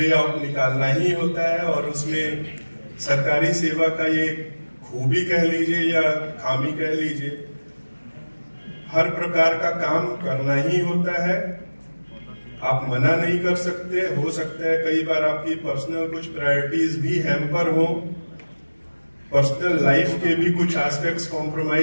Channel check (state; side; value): inverted; both; correlation -1.00